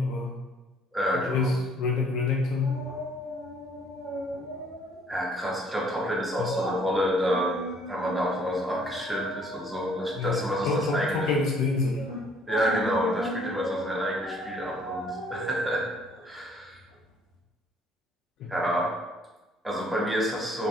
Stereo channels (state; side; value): normal; both; correlation 0.60